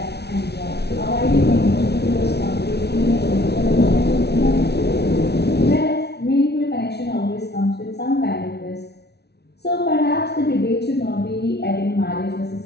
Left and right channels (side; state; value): right; late; 0.49 ms